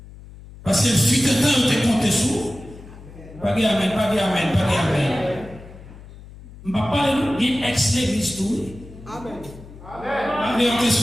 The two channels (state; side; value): noise; left; hum, 18 dB below the sound